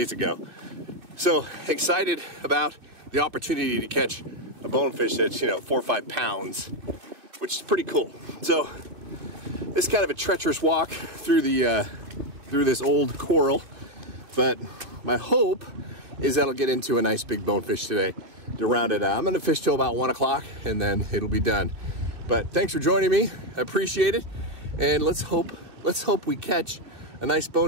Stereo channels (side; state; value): left; late; 2.8 ms